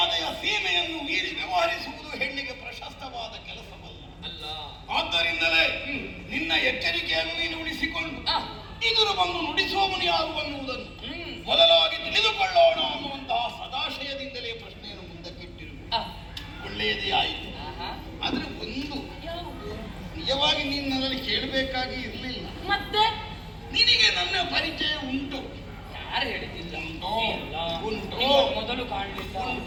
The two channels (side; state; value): both; identical; correlation 1.00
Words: ಸೀಮೆಯನ್ನು ಮೀರಿ ವ್ಯವಹರಿಸುವುದು ಹೆಣ್ಣಿಗೆ ಪ್ರಶಸ್ತವಾದ ಕೆಲಸವಲ್ಲ. ಅಲ್ಲ, ಆದ್ದರಿಂದಲೇ ನಿನ್ನ ಎಚ್ಚರಿಕೆಯನ್ನು ನೀನು ಉಳಿಸಿಕೊಂಡು ಇದುರು ಬಂದು ನುಡಿಸುವವನು ಯಾರು ಅನ್ನುವುದನ್ನು ಮೊದಲಾಗಿ ತಿಳಿದುಕೊಳ್ಳೋಣ ಅನ್ನುವಂತಹ ಸದಾಶಯದಿಂದಲೇ ಪ್ರಶ್ನೆಯನ್ನು ಮುಂದಕ್ಕಿಟ್ಟಿರು. ಒಳ್ಳೆಯದೇ ಆಯಿತು. ಆದ್ರೆ ಒಂದು ನಿಜವಾಗಿ ನೀನು ನನ್ನಲ್ಲಿ ಕೇಳಬೇಕಾಗಿ ಇರಲಿಲ್ಲ. ಮತ್ತೆ ನಿನಗೆ ನನ್ನ ಪರಿಚಯ ಉಂಟು. ಯಾರು ಹೇಳಿದ್ದಿಲ್ಲ? ಉಂಟು. ಮೊದಲು ಕಾಣಲಿಲ್ಲ,